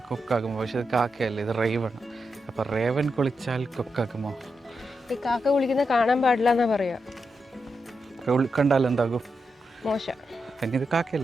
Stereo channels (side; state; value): both; normal; correlation 0.86